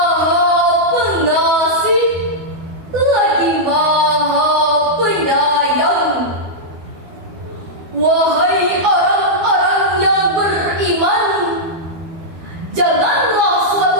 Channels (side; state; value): left; late; 12 ms